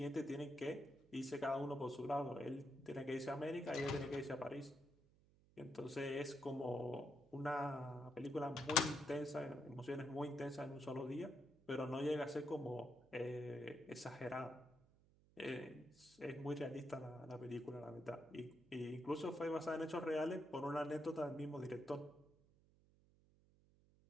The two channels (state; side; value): noise; right; hum, 28 dB below the sound